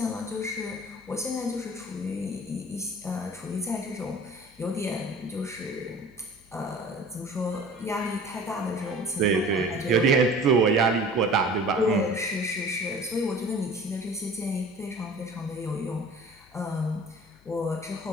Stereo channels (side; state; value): left; noise; hum, 28 dB below the sound